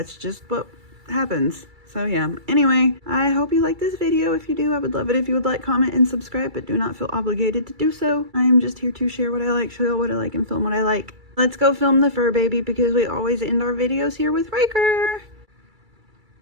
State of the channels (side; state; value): left; late; 2.3 ms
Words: just what happens. So yeah, anyway, I hope you like this video. If you do, I would love it if you would like, comment, and subscribe, but do not feel obligated to do so. I am just here to share what I like, show you what I like, and film what I like. Let's go film the fur baby, because we always end our videos here with Ryker.